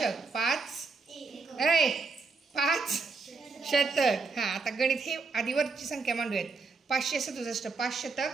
5 शतक. हां आता गणित हे आधीवरची संख्या मांडूयात. 567 5 शतक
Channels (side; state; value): left; quieter; 4.3 dB